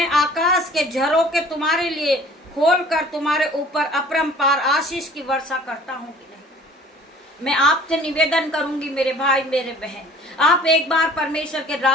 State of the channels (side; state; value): both; normal; correlation 0.50